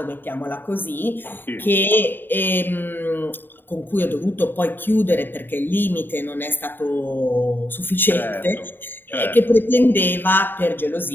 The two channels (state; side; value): late; right; 0.095 ms